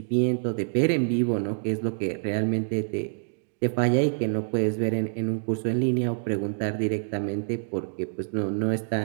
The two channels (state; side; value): silent; left; digital silence